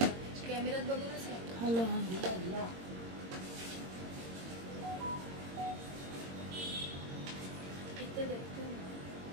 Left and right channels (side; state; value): left; late; 22 ms